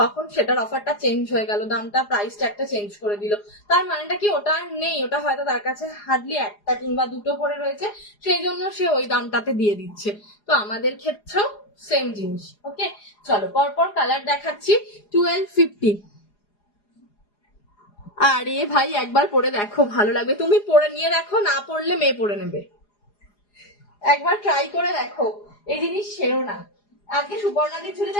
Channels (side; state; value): right; late; 4.9 ms